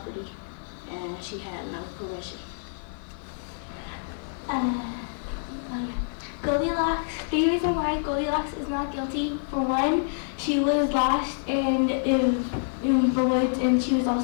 and she had no permission. Goldilocks, the reason why Goldilocks is not guilty, for one, she was lost in the woods and she was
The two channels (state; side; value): silent; right; digital silence